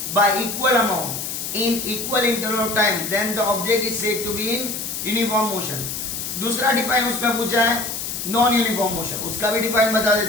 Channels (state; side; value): noise; left; hiss, 5 dB below the sound